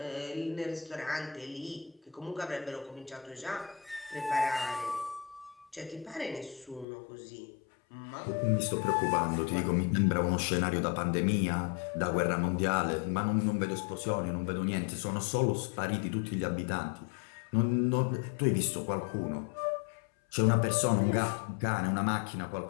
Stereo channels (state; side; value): drops out; right; at 6.9 s